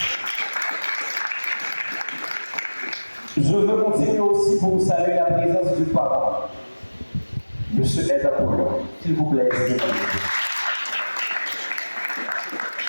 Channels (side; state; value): both; inverted; correlation -1.00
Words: Je veux continuer aussi pour vous saluer la présence du parent, M. Ed Apollon. S'il vous plaît,